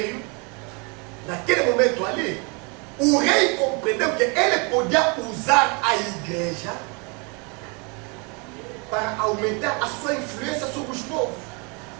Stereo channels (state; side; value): quieter; left; 32.2 dB